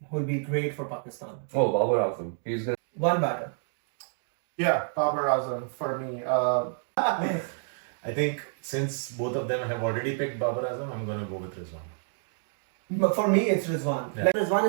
will be great for Pakistan. Oh, Babar Azam. He's gonna. One batter. Yeah, Babar Azam for me. I think since both of them have already picked Babar Azam, I'm gonna go with Rizwan. But for me, it's Rizwan. Yeah. Like Rizwan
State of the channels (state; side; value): silent; left; 59 dB below the other